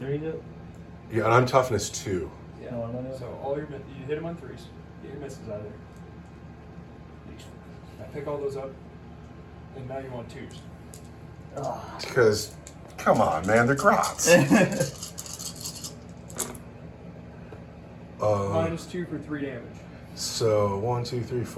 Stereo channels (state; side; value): identical; both; correlation 1.00